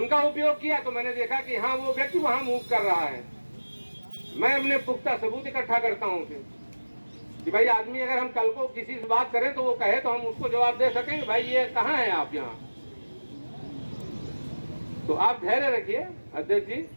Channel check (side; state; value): both; inverted; correlation -1.00